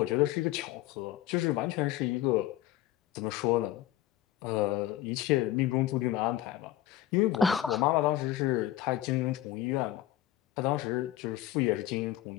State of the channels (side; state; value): right; quieter; 13.3 dB